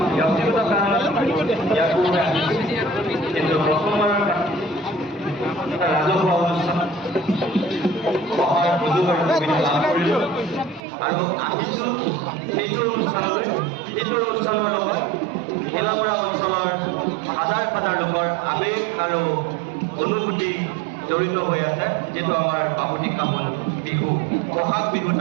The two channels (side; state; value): left; drops out; at 10.8 s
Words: ব্যক্তিগত কাৰণত ইয়াৰ পূৰ্বে আহিছোঁ, কিন্তু প্ৰথমবাৰৰ এটা ৰাজহুৱা অনুষ্ঠান অহাৰ সুযোগ আৰু সুবিধা লাভ কৰিলোঁ আৰু আহিছোঁ সেইটো অনুষ্ঠানলৈ, যিটো অনুষ্ঠানৰ লগত ভেলাগড়া অঞ্চলৰ হাজাৰ হাজাৰ লোকৰ আৱেগ আৰু অনুভূতি জড়িত হৈ আছে, যিটো আমাৰ বাপতিসাহোন বিহু, বহাগ বিহুত